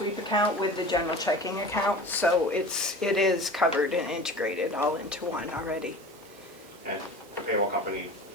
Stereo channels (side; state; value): both; normal; correlation 0.37